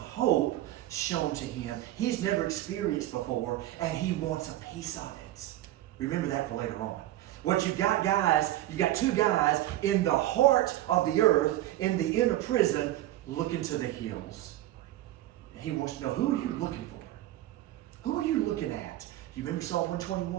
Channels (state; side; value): quieter; left; 14.6 dB